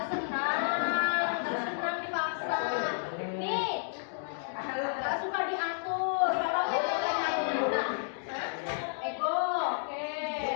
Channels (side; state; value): right; silent; digital silence